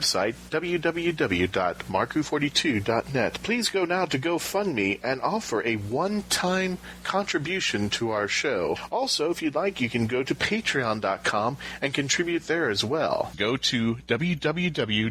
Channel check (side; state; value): both; identical; correlation 1.00